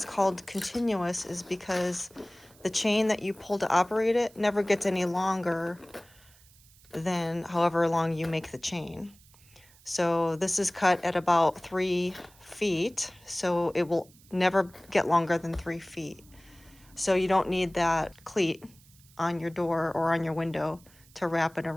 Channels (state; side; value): noise; right; hiss, 27 dB below the sound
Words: called continuous is because the chain that you pull to operate it never gets any longer than however long you make the chain. So this is cut at about 3 feet, so it will never get longer than 3 feet. So you don't need that cleat on your door or on your window to wrap it